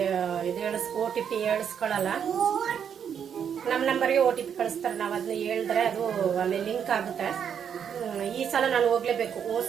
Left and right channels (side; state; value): left; quieter; 8.0 dB